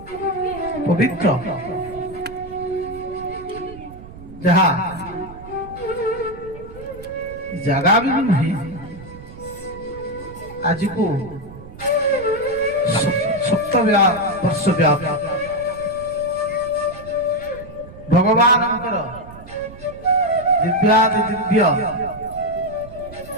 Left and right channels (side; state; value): right; noise; rumble, 16 dB below the sound